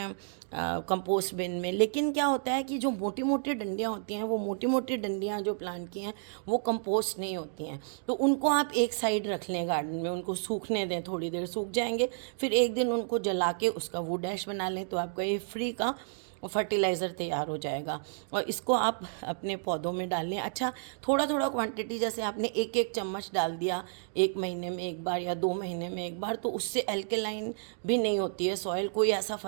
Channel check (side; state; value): left; silent; digital silence